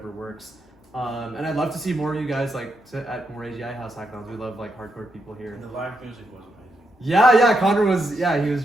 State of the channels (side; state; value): both; normal; correlation 0.82